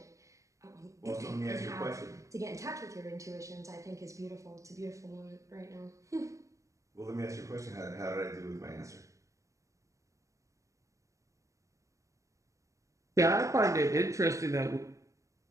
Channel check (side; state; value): left; late; 0.15 ms